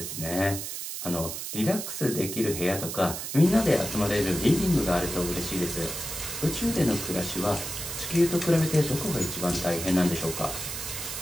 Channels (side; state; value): right; noise; hiss, 6 dB below the sound